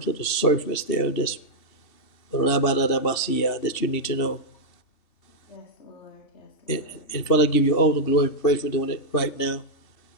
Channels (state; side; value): late; right; 3.2 ms